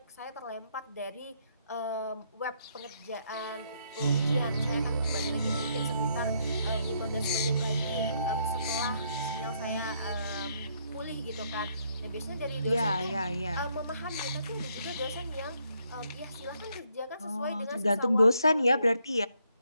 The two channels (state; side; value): inverted; both; correlation -0.72